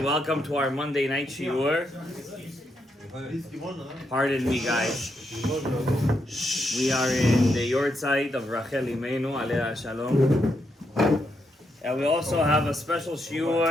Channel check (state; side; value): normal; both; correlation 0.80